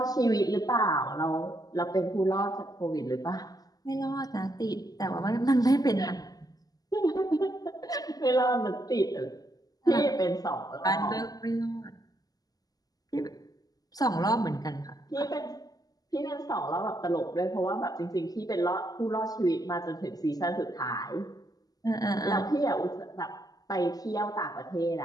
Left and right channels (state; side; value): late; right; 0.18 ms